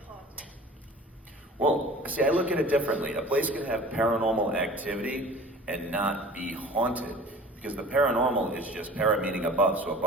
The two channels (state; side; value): normal; both; correlation 0.43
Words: haunted? Well, see, I look at it differently. A place can have paranormal activity and not be haunted. Because the paranormal is just para meaning above, so